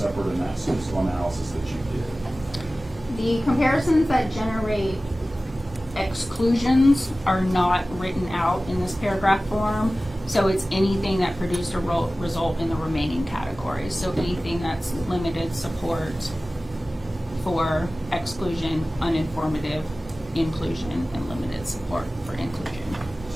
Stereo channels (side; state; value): both; normal; correlation 0.97